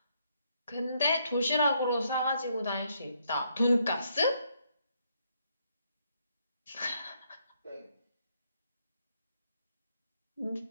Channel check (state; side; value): inverted; both; correlation -0.73